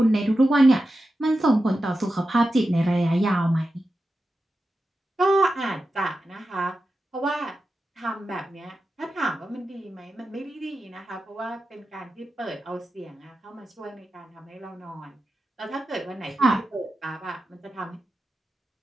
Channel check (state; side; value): normal; both; correlation 0.91